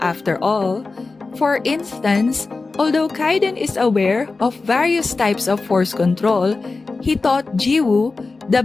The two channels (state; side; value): quieter; right; 3.8 dB